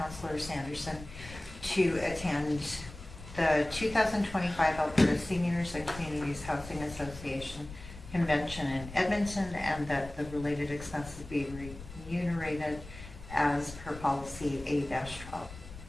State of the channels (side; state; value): left; noise; rumble, 15 dB below the sound